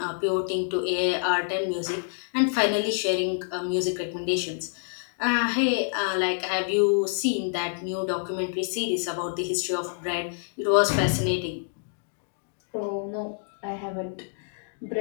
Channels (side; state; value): right; silent; digital silence